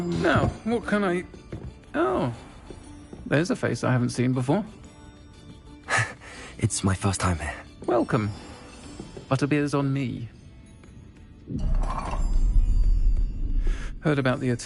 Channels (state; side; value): identical; both; correlation 1.00